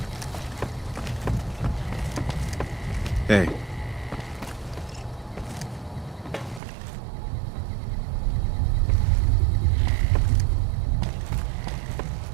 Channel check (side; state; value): left; drops out; at 6.6 s